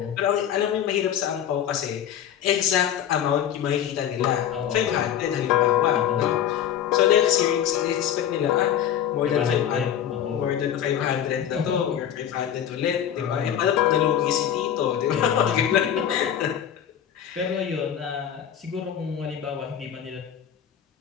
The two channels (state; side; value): quieter; right; 9.8 dB